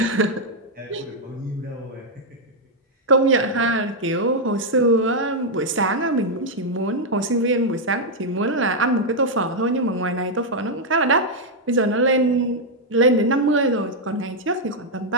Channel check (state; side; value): normal; both; correlation -0.02